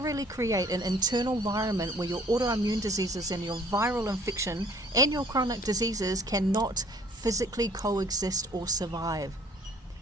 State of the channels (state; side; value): normal; both; correlation 0.55